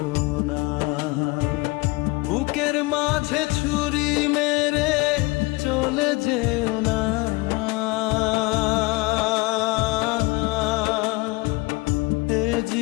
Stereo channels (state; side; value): quieter; right; 24.4 dB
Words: না। বুকের মাঝে ছুরি মেরে চলে যেও না, এ